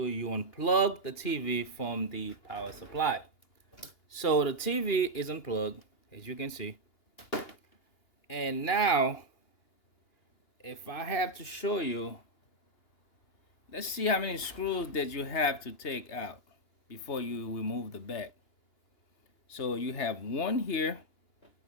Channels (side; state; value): right; late; 2.8 ms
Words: you unplug the TV from the power supply. So the TV is unplugged, as you can see. And now, if I have to show you, let's see how many screws that you have to take out before you remove the back. So you have one here.